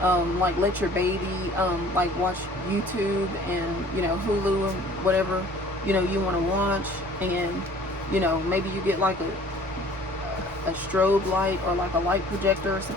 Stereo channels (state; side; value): normal; both; correlation 0.51